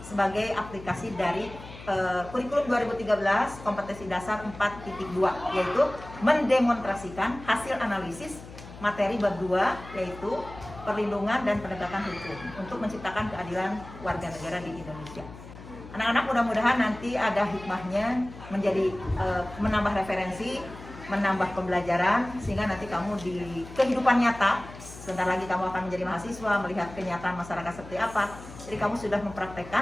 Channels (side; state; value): left; noise; hum, 15 dB below the sound